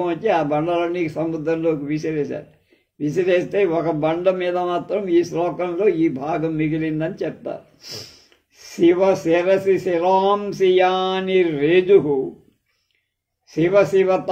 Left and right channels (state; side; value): identical; both; correlation 1.00